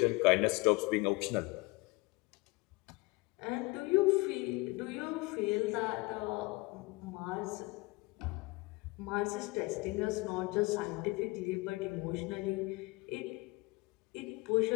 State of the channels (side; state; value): right; quieter; 24.0 dB